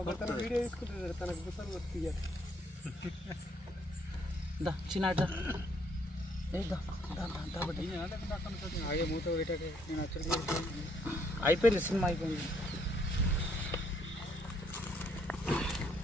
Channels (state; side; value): normal; both; correlation 0.68